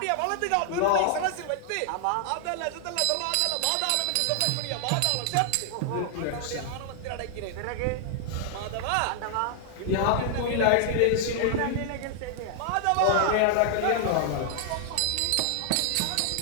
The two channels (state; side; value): different; both; correlation 0.00